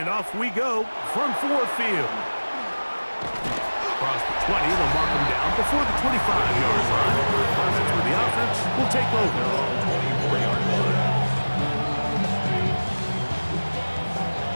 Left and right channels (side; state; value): both; inverted; correlation -1.00